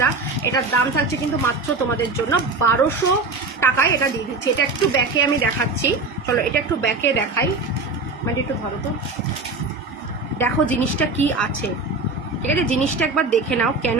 এটার দাম থাকছে কিন্তু মাত্র তোমাদের জন্য 1200 টাকায় এটা দিয়ে দিচ্ছি। এটা একটু ব্যাকে আমি দেখাচ্ছি, চলো এটা একটু ব্যাকে দেখাই, মানে একটু ধরো তো, দেখো জিনিসটা কি আছে, ঠিক আছে? জিনিসটা একবার দেখে নাও, কেন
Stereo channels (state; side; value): quieter; left; 3.6 dB